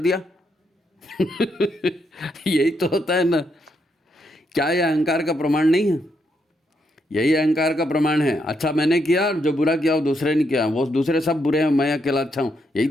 यही तो होता है ना। क्या ये अहंकार का प्रमाण नहीं है? यही अहंकार का प्रमाण है। अच्छा मैंने किया और जो बुरा किया वो दूसरे ने किया, वो दूसरे सब बुरे हैं, मैं अकेला अच्छा हूँ। यही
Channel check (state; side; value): normal; both; correlation 0.78